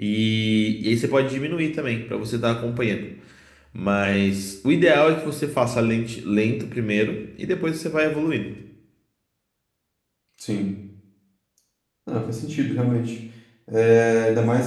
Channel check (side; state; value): both; identical; correlation 1.00